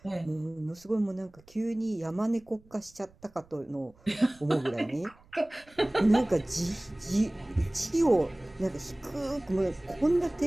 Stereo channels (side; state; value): right; noise; rumble, 28 dB below the sound